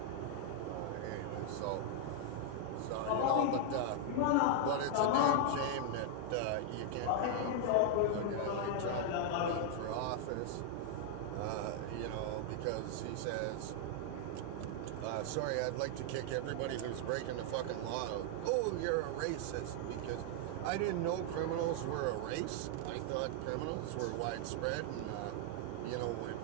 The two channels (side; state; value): both; different; correlation 0.00